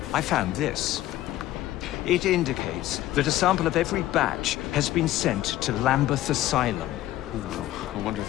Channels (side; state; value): right; quieter; 14.7 dB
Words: I found this. It indicates that a sample of every batch has been sent to Lambeth Asylum. I wonder